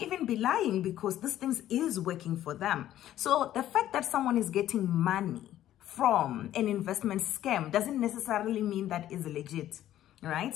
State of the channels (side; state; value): right; quieter; 12.6 dB